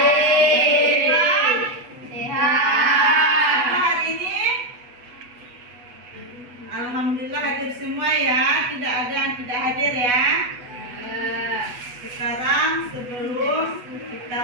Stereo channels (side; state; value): left; late; 8.2 ms